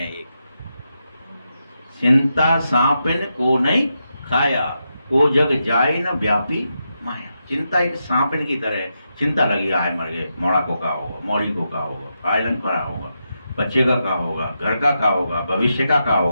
एक, चिंता सांपिन को नहीं खाया, को जग जाए न व्यापी माया। चिंता एक सांपिन की तरह है। चिंता लगी है, मर गए, मोड़ा को का होगा, मौड़ी को का होगा, आयरन का होगा, बच्चे का क्या होगा, घर का क्या होगा, भविष्य का क्या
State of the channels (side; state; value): both; inverted; correlation -0.85